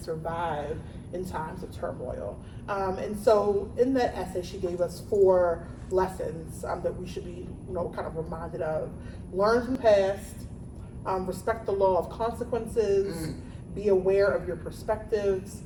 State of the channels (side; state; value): both; identical; correlation 1.00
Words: survive in times of turmoil. And so in that essay, she gave us 4 lessons that we should be, kind of reminded of. Learn from the past, respect the law of consequences, be aware of your perspectives,